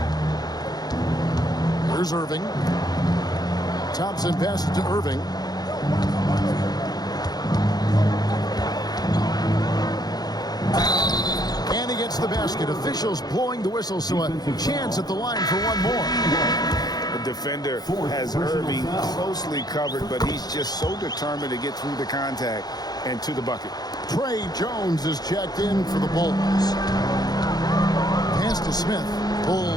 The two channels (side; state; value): right; late; 0.19 ms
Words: Here's Irving. Thompson passes to Irving. And he gets the basket. Officials blowing the whistle, so a chance at the line for one more. The defender has Irving closely covered, but he's just so determined to get through the contact and to the bucket. Trey Jones is checked in for the Bulls. Pass to Smith.